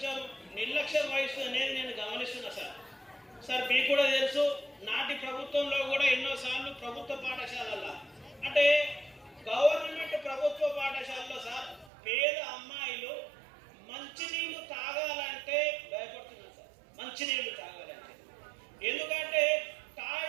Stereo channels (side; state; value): left; drops out; at 11.9 s